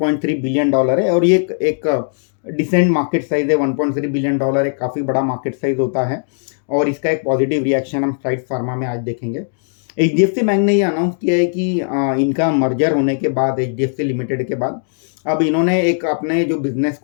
बिलियन है और ये एक डिसेंट मार्केट साइज है। $1.3 बिलियन एक काफ़ी बड़ा मार्केट साइज होता है और इसका एक पॉजिटिव रिएक्शन हम साइड्स फार्मा में आज देखेंगे। HDFC बैंक ने ये अनाउंस किया है कि इनका मर्जर होने के बाद HDFC लिमिटेड के बाद अब इन्होंने एक अपने जो बिजनेस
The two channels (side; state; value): right; silent; digital silence